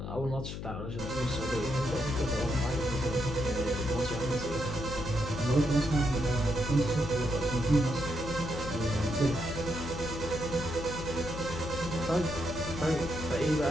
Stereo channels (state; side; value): noise; left; hum, 7 dB below the sound